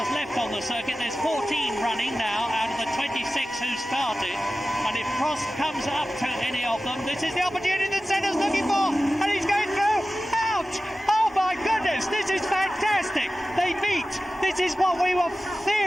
left on the circuit. There's 14 running now out of the 26 who started, and if Prost comes up to any of them, this is the opportunity that Senna's looking for, and he's going through. Ouch! Oh my goodness, this is fantastic. They meet. This is what we were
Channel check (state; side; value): normal; both; correlation 0.95